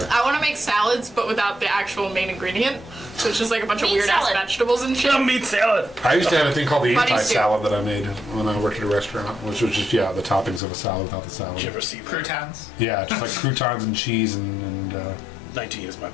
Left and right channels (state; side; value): drops out; right; at 10.6 s